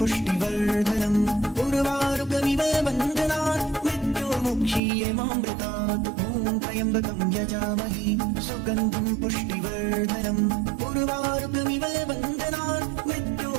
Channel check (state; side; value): drops out; left; at 4.8 s